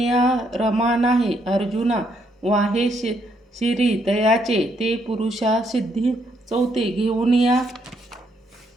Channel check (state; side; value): normal; both; correlation 0.74